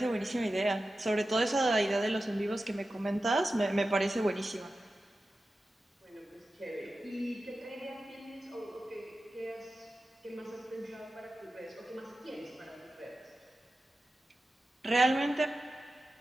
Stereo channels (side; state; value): both; normal; correlation 0.93